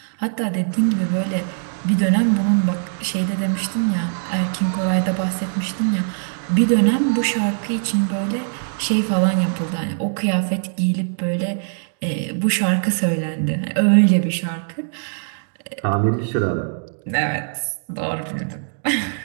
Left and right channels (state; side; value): silent; left; digital silence